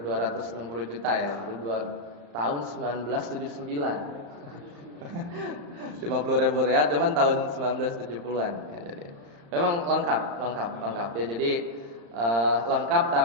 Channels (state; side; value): late; left; 35 ms